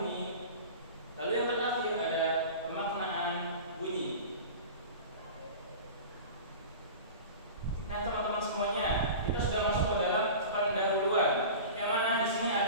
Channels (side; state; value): both; inverted; correlation -0.34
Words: lalu yang terakhir ada pemaknaan bunyi. Nah teman-teman semuanya, kita sudah masuk ke dalam pendahuluan, yang mana di sini